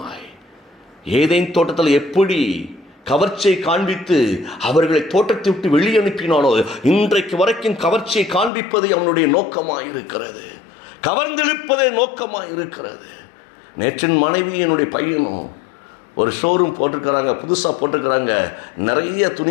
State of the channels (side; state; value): right; drops out; at 8.5 s